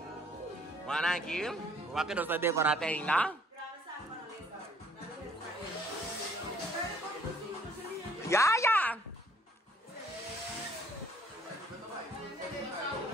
Mana aqui? Waktu dosa decorate ainda. Ya.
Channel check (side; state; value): both; normal; correlation 0.60